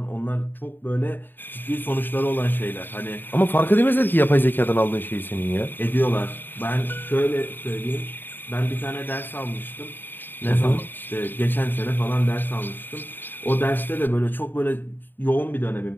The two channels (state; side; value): late; right; 0.093 ms